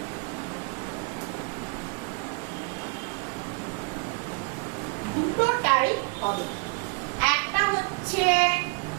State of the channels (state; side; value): quieter; left; 33.7 dB